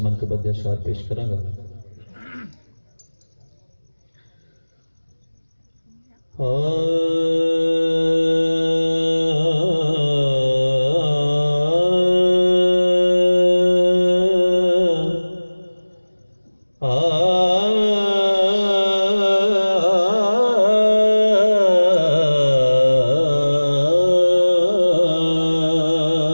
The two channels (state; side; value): inverted; both; correlation -1.00